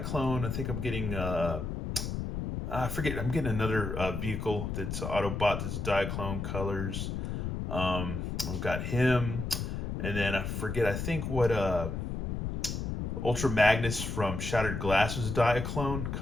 I think I'm getting I forget. I'm getting another vehicle that's Autobot that's Diaclone colors. We've got him, and then I forget. I think what Ultra Magnus from Shattered Glass was Diaclone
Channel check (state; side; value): noise; left; rumble, 3 dB below the sound